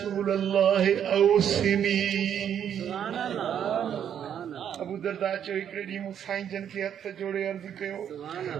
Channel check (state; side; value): quieter; left; 9.1 dB